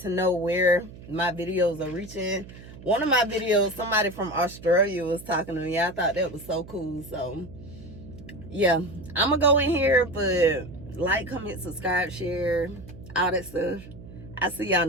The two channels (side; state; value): right; noise; hum, 17 dB below the sound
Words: know where my videos are reaching. One of my videos, somebody from Australia was talking to me. I thought that was so cool. So yeah, I'm gonna go in here, but like, comment, subscribe, share, all that stuff. I'll see y'all in